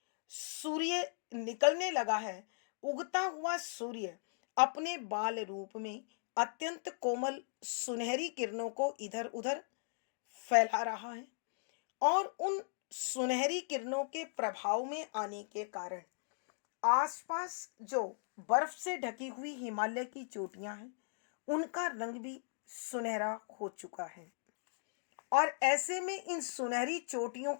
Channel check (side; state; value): right; silent; digital silence